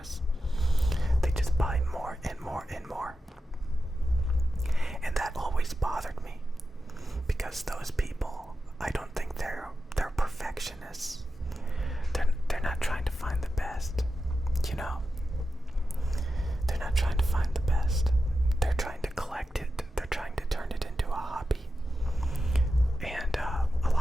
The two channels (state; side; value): normal; both; correlation 0.90